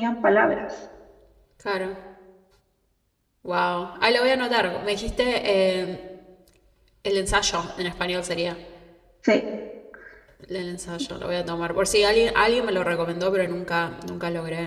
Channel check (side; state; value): both; identical; correlation 1.00